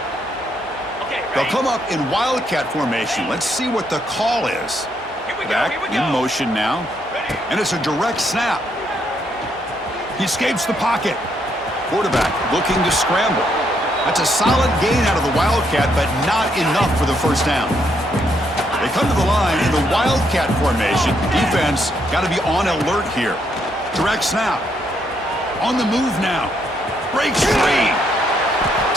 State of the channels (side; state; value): both; normal; correlation 0.74